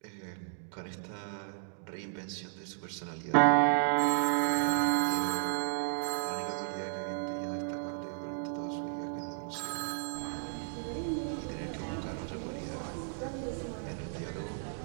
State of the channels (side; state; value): left; silent; digital silence